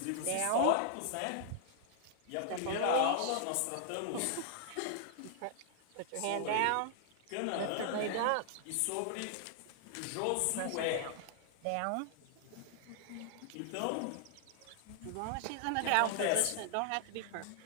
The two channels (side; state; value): both; different; correlation 0.00